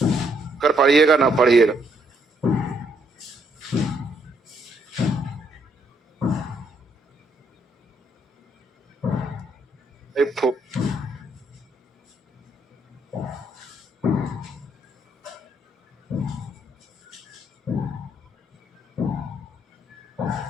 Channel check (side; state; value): both; normal; correlation 0.72